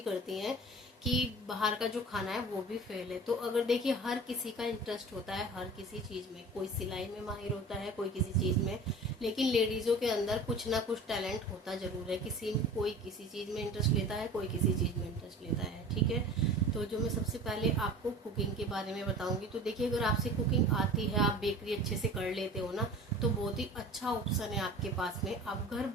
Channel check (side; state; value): both; normal; correlation 0.40